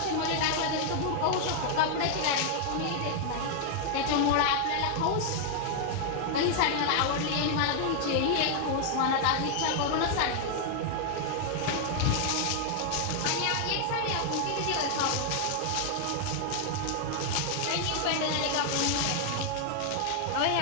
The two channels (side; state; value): both; different; correlation 0.00